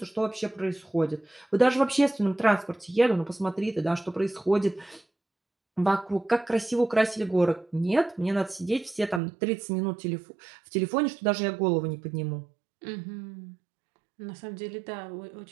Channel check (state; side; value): drops out; left; at 9.2 s